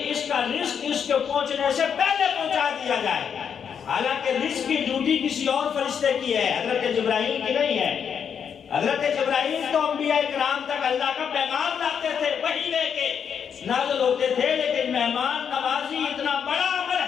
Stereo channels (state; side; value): quieter; right; 7.5 dB